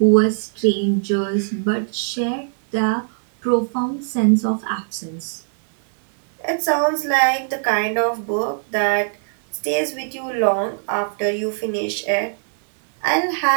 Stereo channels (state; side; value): silent; left; digital silence